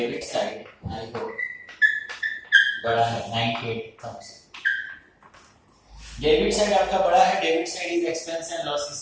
साइड आई होप बड़ा है 98,000। डेबिट साइड आपका बड़ा है, debit side is expense and loss.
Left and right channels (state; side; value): identical; both; correlation 1.00